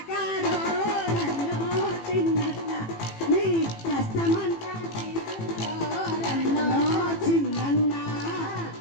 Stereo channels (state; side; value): late; right; 18 ms